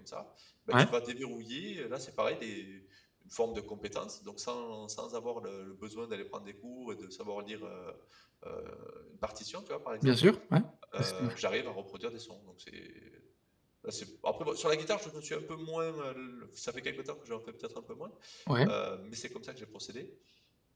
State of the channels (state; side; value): identical; both; correlation 1.00